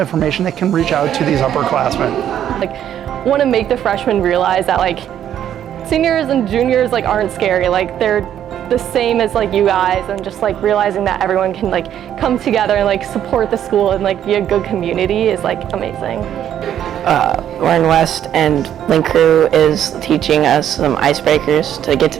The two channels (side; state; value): left; quieter; 10.3 dB